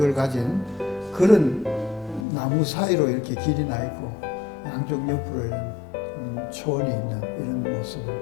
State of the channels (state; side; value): drops out; right; at 2.2 s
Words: 가진 그런 나무 사이로 이렇게 길이 나 있고 양쪽 옆으로 이런 초원이 있는 이런 모습을